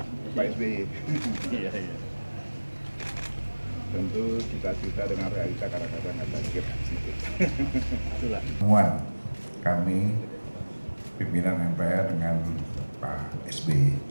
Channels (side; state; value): both; inverted; correlation -1.00